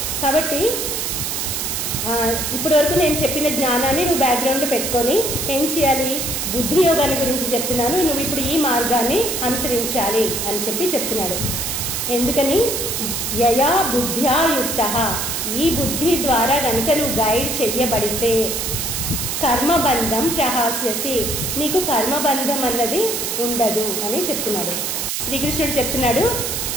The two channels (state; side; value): noise; right; hiss, 2 dB below the sound